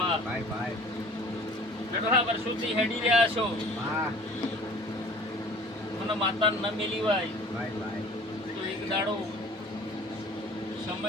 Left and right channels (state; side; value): normal; both; correlation 0.47